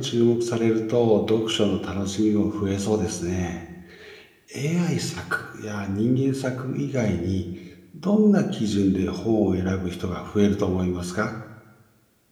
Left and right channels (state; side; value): identical; both; correlation 1.00